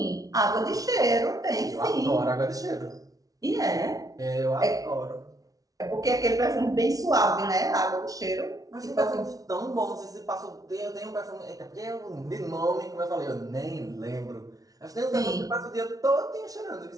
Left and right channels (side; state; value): left; late; 0.18 ms